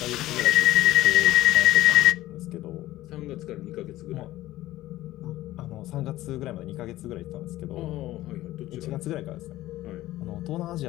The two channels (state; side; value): quieter; right; 15.9 dB